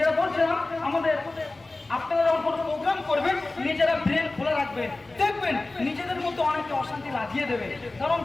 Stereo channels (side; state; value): right; quieter; 3.1 dB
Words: বলছিলাম, আমাদের আপনারা যখন কোনো প্রোগ্রাম করবেন নিজেরা ব্রেন খোলা রাখবেন, দেখবেন নিজেদের মধ্যে অনেকে অশান্তি লাগিয়ে দেবে। কারণ